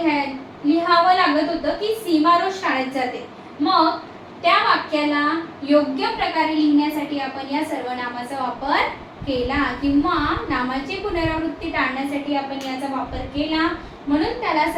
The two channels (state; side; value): identical; both; correlation 1.00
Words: लिहावं लागत होतं की सीमा रोज शाळेत जाते. मग त्या वाक्याला योग्य प्रकारे लिहिण्यासाठी आपण या सर्वनामाचा वापर केला किंवा नामाची पुनरावृत्ती टाळण्यासाठी आपण याचा वापर केला, म्हणून त्याला